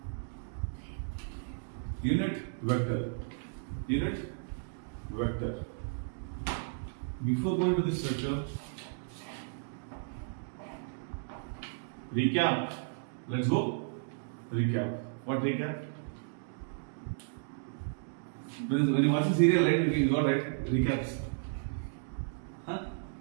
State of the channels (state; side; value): silent; left; digital silence